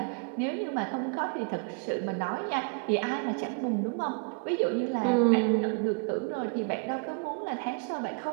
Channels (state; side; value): quieter; left; 37.0 dB